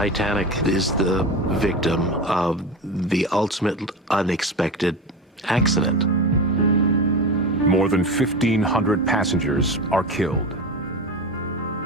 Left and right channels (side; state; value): both; normal; correlation 0.25